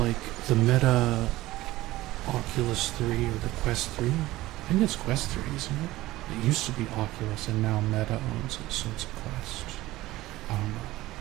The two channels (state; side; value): quieter; left; 17.4 dB